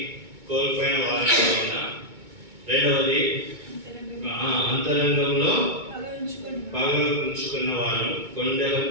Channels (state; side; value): late; left; 2.2 ms